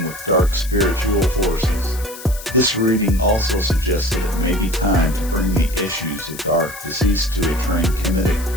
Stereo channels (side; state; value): left; noise; hiss, 14 dB below the sound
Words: with dark spiritual forces. This reading also suggests that it may be time to bring the issues of dark decease to a trained